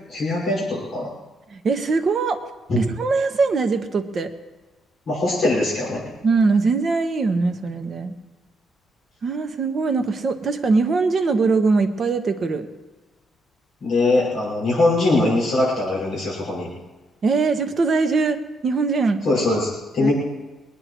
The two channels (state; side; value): normal; both; correlation 0.77